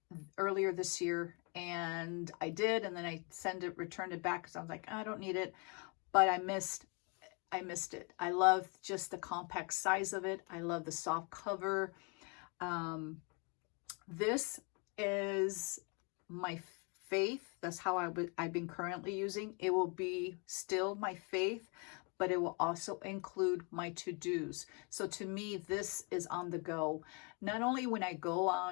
earlier this year, and I did, and then I returned it back because I was like, I don't need it. But I missed it. I love just the compact size of it. I love the soft cover. This is my faith. That's how I've been currently using. It will be still my faith, but it will also include my to-dos. So to me, this is on the go. Not only when I go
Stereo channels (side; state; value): right; quieter; 33.2 dB